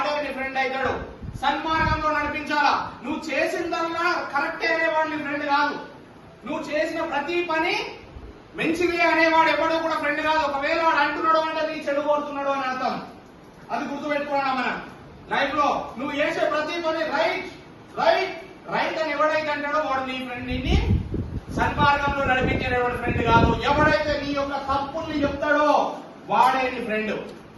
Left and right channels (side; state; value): both; identical; correlation 1.00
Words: నీ ఫ్రెండ్ అవుతాడు. సన్మార్గంలో నడిపించాలా. నువ్వు చేసిందల్లా కరెక్టే అనేవాడు నీ ఫ్రెండ్ కాదు. నువ్వు చేసిన ప్రతి పని మంచిది అనేవాడు ఎవడో కూడా ఫ్రెండ్ కాదు. ఒకవేళ వాడు అంటున్నాడు అంటే నీ చెడు కోరుతున్నాడు అని అర్థం. అది గుర్తుపెట్టుకోవడం మనం లైఫ్ లో. నువ్వు చేసే ప్రతి పని రైట్ రైట్ రైట్ అని ఎవడైతే అంటాడో వాడు నీ ఫ్రెండ్. నిన్ను సన్మార్గంలో నడిపించేవాడు ఫ్రెండ్ కాదు. ఎవడైతే నీ యొక్క తప్పుల్ని చెప్తాడో వాడే నీ ఫ్రెండ్.